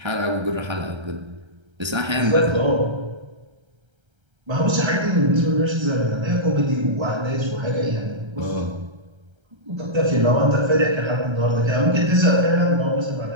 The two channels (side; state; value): left; late; 1.3 ms